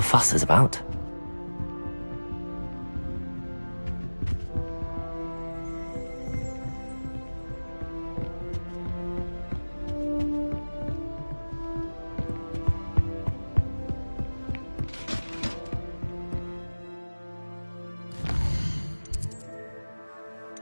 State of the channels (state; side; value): inverted; both; correlation -1.00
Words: fuss is about.